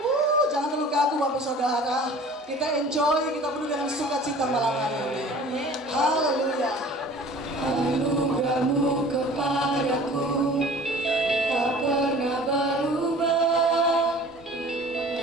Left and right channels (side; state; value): both; normal; correlation 0.45